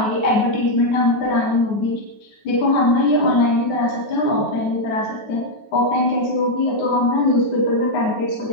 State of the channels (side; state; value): right; late; 9.4 ms